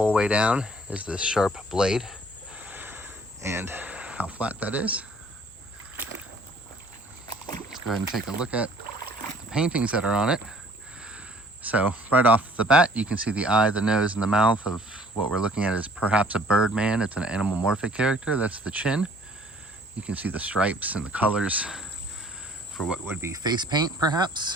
way down, is this sharp blade, and how flat that is. Let's go ahead and take a look at the paintings that are on it. So right off the bat, you can see the eye, the nose, and the mouth of what we're looking at is perhaps a bird man. It's an animalmorphic character. That's the chin. You can see the stripes and the colors for what would be face paint, perhaps.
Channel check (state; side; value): normal; both; correlation 0.56